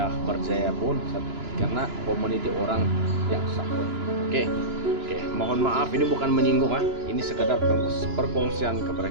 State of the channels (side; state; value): left; late; 2.9 ms